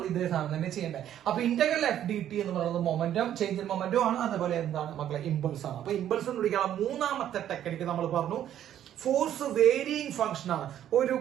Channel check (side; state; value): left; quieter; 10.9 dB